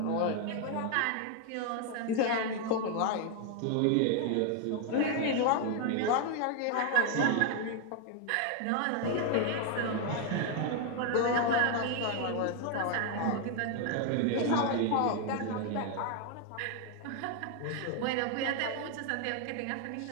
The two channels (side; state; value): both; different; correlation 0.01